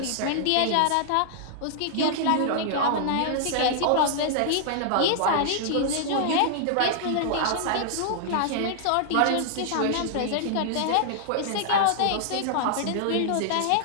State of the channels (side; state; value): both; different; correlation -0.01